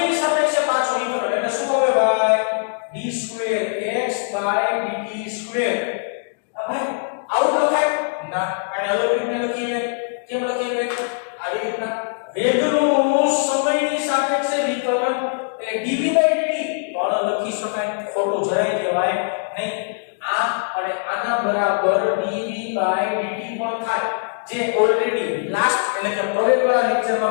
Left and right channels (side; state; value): right; silent; digital silence